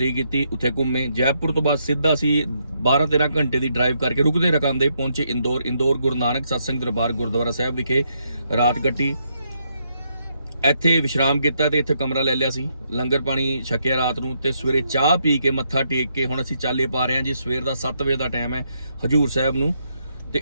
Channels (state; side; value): inverted; both; correlation -0.77